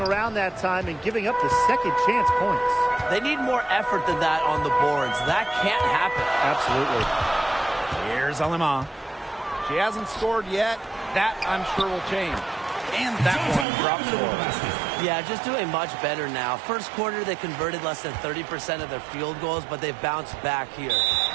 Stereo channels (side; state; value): left; drops out; at 13.7 s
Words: around that time and giving up the second chance points. They need more effort than that on the boards. That can't happen. Absolutely. Here's Alama. She hasn't scored yet. That, I'm sure, will change. And that one drops score. Yeah, just doing much better now. First quarter, they converted less than 30% of their field goals, but they've bounced back here.